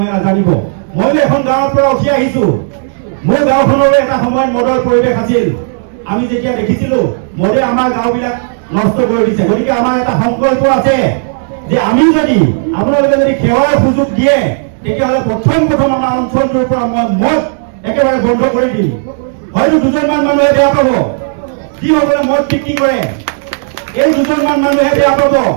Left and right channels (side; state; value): left; silent; digital silence